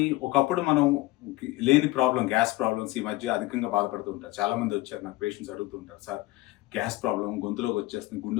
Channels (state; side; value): quieter; right; 19.2 dB